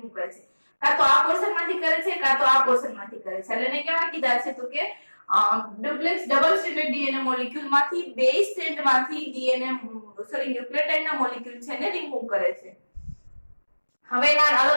કરે છે કાં તો આ પોર્શન માંથી કરે છે કાં તો આ પોર્શન માંથી કરે છે એટલે એને કેવા કીધા છે તો કે duplex double standard DNA molecule માંથી બે સ્ટેન્ડ માંથી ન્યુક્લિયોટાઇડ ના મોલેક્યુલ છે ને રિમૂવ કરે છે હવે એના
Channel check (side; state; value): both; inverted; correlation -1.00